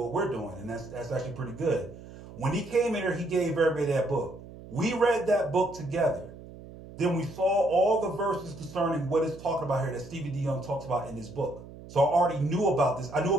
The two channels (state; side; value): noise; right; hum, 16 dB below the sound